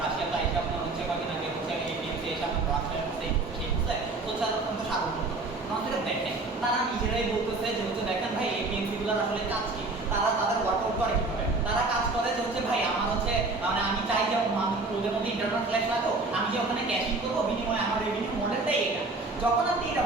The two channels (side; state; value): left; quieter; 3.3 dB